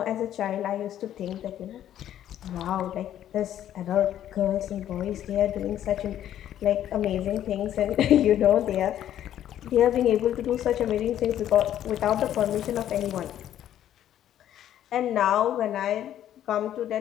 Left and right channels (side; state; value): right; quieter; 11.3 dB